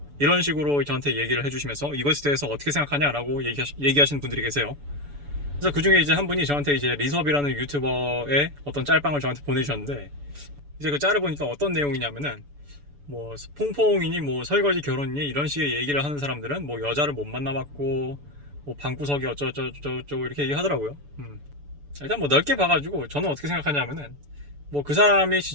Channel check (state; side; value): late; left; 6.9 ms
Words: 이런 식으로 저한테 얘기를 해주시면서 이것에 대해서 어떻게 생각하냐라고 얘기하시는 분들이 계세요. 그래서 그 중에 이제 한 분이 저한테 이제 리섭이라는 유튜버의 어떤 짤방을 저한테 보내주셨는데, 이제 그 짤을 보니까 어떤 내용이냐면은 뭐 퐁퐁이니 뭐 설거지 결혼이니 이런 식의 얘기를 하는 사람들은 뭐 여자를 못 만나봤고 뭐 방구석이 어쩌고저쩌고 이렇게 얘기하더라고요. 일단 뭐 넓게 봐가지고 저는 어떻게 생각하냐면은 뭐 그 사람이